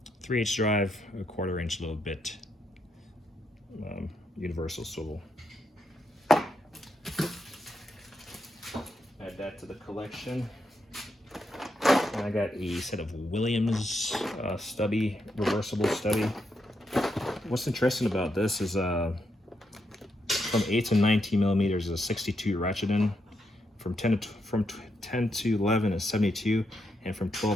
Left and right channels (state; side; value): normal; both; correlation 0.81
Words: 3/8 drive, a 1/4 inch little bit, universal swivel. Add that to the collection. And I got a set of Williams stubby, reversible stubby. What's interesting about this is from 8 to 19 millimeters is 62 ratcheting, from 10 to 11 is 72, and from